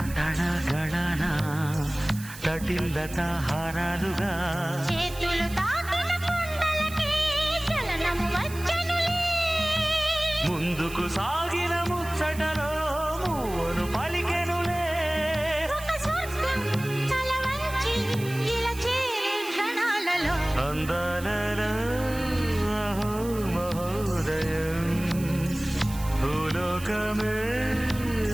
తడ గడన తటిల్లత హారాలుగా చేతులు తాకిన కొండలకి చలనము వచ్చనులే ముందుకు సాగిన ముచ్చటలో మూవను పలికెనులే ఒక స్వర్గం తల వంచి ఇలా చేరే క్షణాలలో అందాలలో అహో మహోదయం భూలోకమే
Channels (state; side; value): noise; right; hiss, 15 dB below the sound